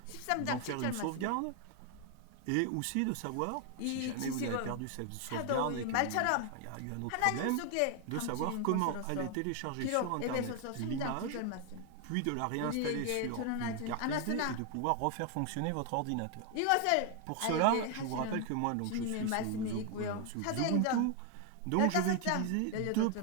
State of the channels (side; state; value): both; different; correlation 0.01